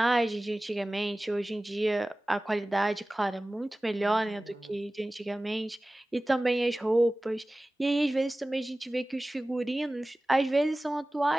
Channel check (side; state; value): both; normal; correlation 0.97